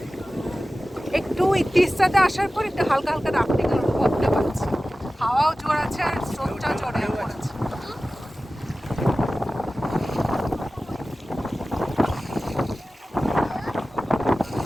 একটু তিস্তাতে আসার পর একটু হালকা হালকা রাফটিং এর অনুভবটা পাচ্ছি। হাওয়াও জোর আছে আর স্রোতটাও জোরে পড়েছে।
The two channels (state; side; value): normal; both; correlation 0.96